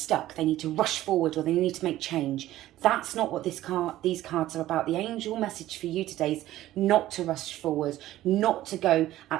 they need to rush forward or they need to make change. That's not what these cards are about. The angel message for you today is not to rush forward, not to go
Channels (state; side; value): quieter; left; 14.6 dB